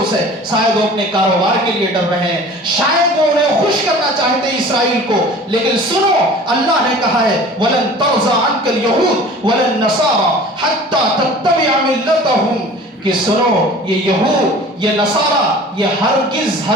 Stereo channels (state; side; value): normal; both; correlation 0.43